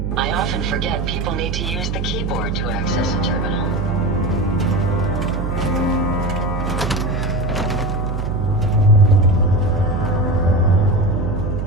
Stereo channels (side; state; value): right; noise; hum, 2 dB below the sound